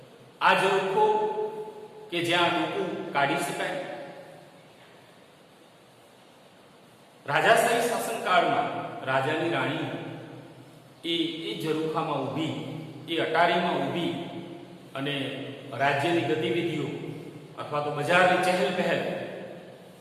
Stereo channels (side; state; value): both; identical; correlation 1.00